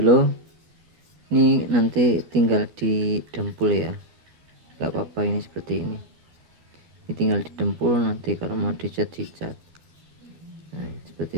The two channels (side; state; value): left; late; 12 ms